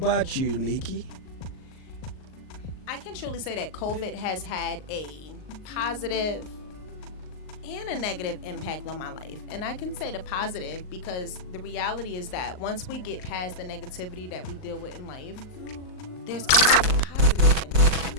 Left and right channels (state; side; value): late; right; 38 ms